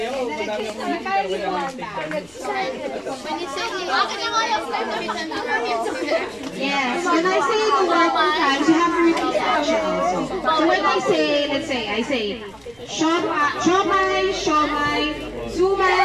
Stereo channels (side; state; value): right; noise; rumble, 28 dB below the sound